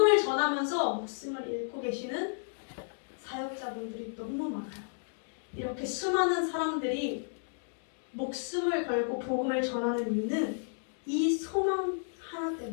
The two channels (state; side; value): silent; right; digital silence